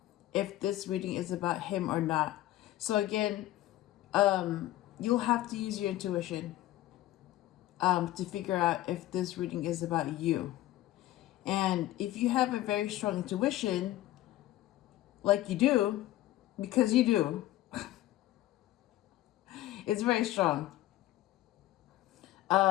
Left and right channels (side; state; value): right; quieter; 15.4 dB